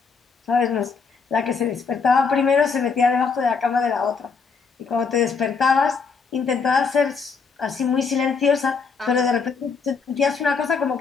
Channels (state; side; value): quieter; right; 5.2 dB